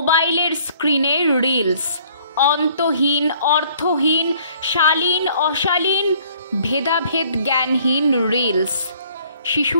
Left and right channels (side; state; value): both; inverted; correlation -0.59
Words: স্ক্রিনে রিলস, অন্তহীন অর্থহীন শালীন অশালীন ভেদাভেদ জ্ঞানহীন রিলস।